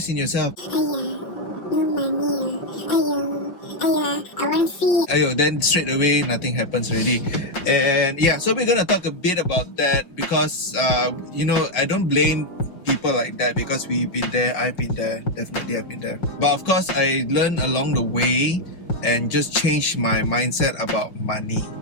in yourself. No money. I want fee. Ayo, then straight away nothing happens already. And yeah, so we're gonna talk a bit about that because I don't blame people like that because we've been there, I've been there, definitely I've been there. But of course I learned along the way and just changed my mindset about money.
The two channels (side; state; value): right; late; 5.6 ms